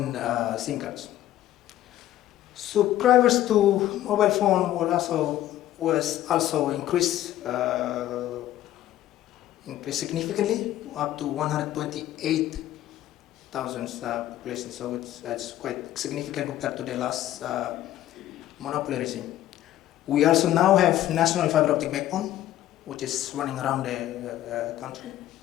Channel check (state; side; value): quieter; right; 13.4 dB